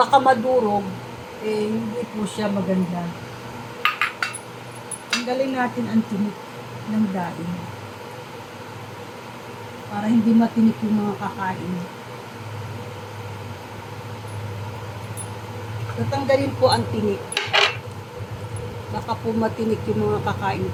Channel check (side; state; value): both; identical; correlation 1.00